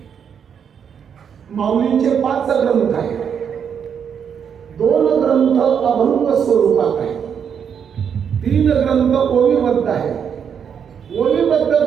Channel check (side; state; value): left; quieter; 7.6 dB